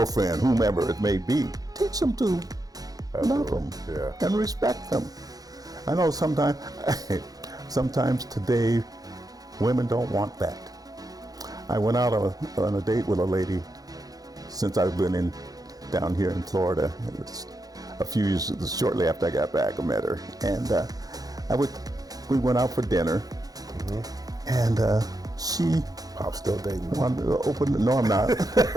whomever it may be. Teach them to love them and respect them. I know sometimes today, women don't want that. I went out on a date with a lady since I've been down here in Florida. It was a few years, shortly after I got back, I met her, and we went out for dinner, and she I'm still dating. wanted to open. No, I'm not.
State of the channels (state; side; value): late; left; 0.18 ms